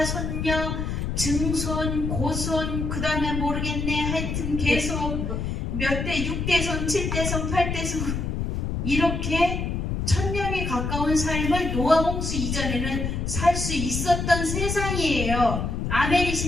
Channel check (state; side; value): noise; left; rumble, 2 dB below the sound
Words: 손녀, 증손, 고손, 그 다음에 모르겠네, 하여튼 계속 몇 대, 6대손, 7대손, 8대손 이렇게 1000년이 가까운 삶을 노아 홍수 이전에는 살 수 있었던 세상이에요.